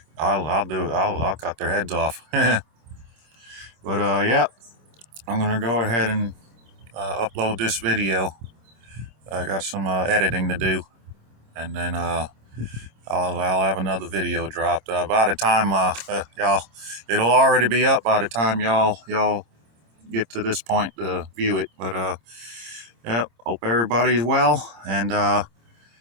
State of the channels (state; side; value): late; left; 26 ms